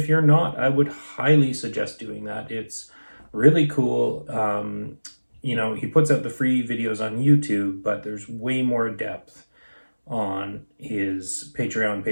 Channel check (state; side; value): inverted; both; correlation -1.00